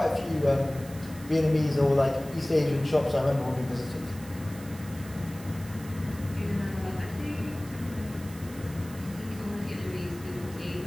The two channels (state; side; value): noise; right; hiss, 18 dB below the sound